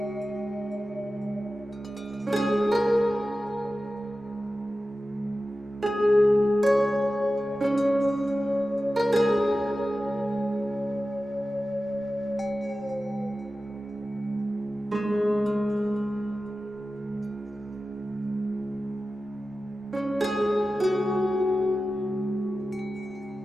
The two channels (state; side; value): normal; both; correlation 0.94